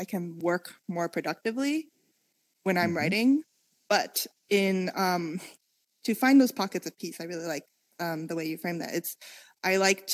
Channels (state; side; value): identical; both; correlation 1.00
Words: can work more productively when I'm writing. But to find those pockets of peace, I really like the way you frame that. I like